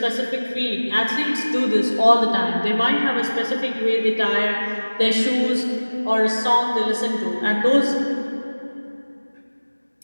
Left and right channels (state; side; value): inverted; both; correlation -1.00